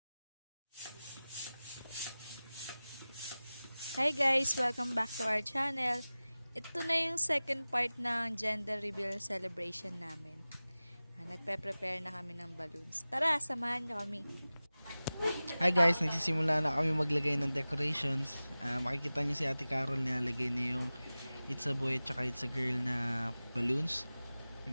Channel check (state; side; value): inverted; both; correlation -0.97